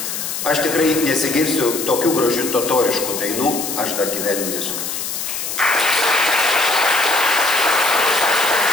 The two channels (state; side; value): noise; left; hiss, 5 dB below the sound